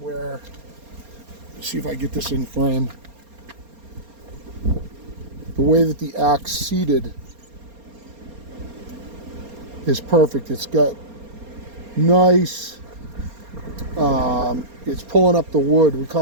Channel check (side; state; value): left; late; 4.3 ms